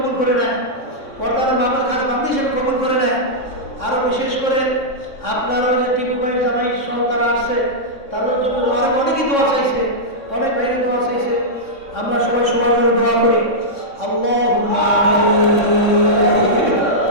করে নেয়, পর্দার মামার খাস বান্দা হিসেবে কবুল করে নেয়। আরও বিশেষ করে আপনার ওই যে টিপু ভাই জামাই সহ তারা আসছে, তাদের জন্য আরো অনেকেই দোয়া চাইছে, অনেক ভাইরা দোয়া চাইছে। আমরা সবাই সবার জন্য দোয়া করি। আল্লাহুম্মা আমিন,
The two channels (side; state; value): right; late; 3.6 ms